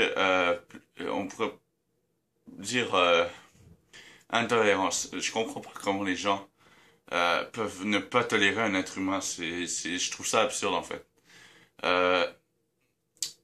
on pourrait dire, intolérances. Je comprends pas comment les gens, peuvent ne pas tolérer un être humain. Je trouve ça absurde en fait. Euh,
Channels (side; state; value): both; identical; correlation 1.00